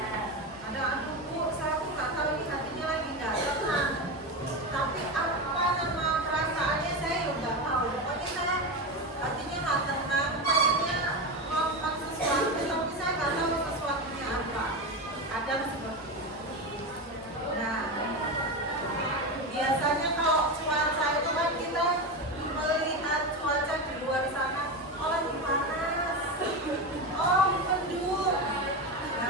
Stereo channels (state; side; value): normal; both; correlation 0.18